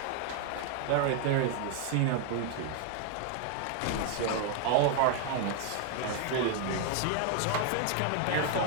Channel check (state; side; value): different; both; correlation 0.00